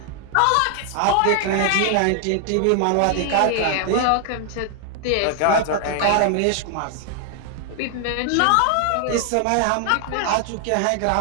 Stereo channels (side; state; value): both; different; correlation 0.00